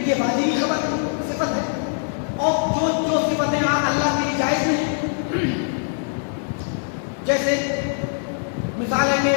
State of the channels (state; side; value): silent; right; 64 dB below the other